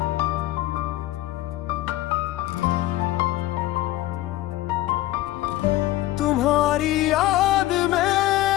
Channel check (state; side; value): quieter; right; 16.2 dB